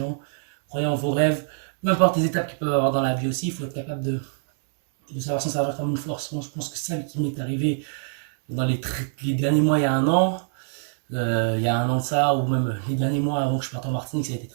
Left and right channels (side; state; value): left; silent; 62 dB below the other